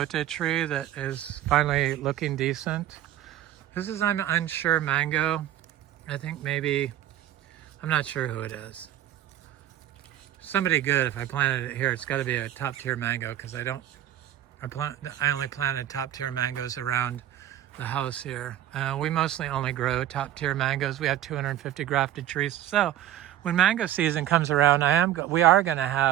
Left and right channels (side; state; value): left; quieter; 12.3 dB